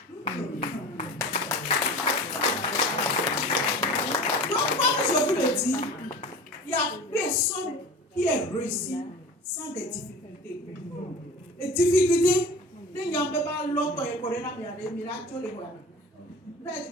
Donc, comme je vous le dis, il n'y a personne qui est réussi sans des difficultés. Les difficultés, les gens ne peuvent pas l'autre et courir la mienne, mais là, tu les vois. Vous avez dit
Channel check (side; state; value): both; normal; correlation 0.37